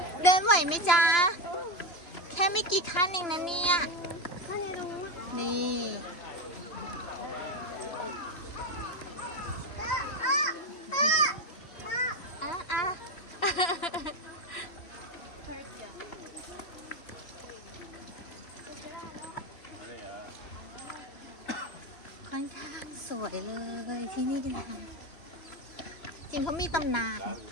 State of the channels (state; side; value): late; right; 2.9 ms